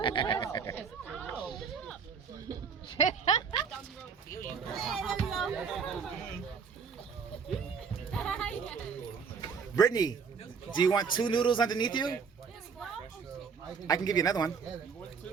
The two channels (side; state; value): left; quieter; 6.0 dB